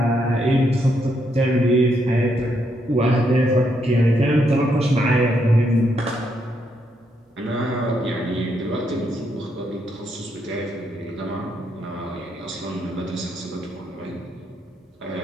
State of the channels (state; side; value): normal; both; correlation 0.77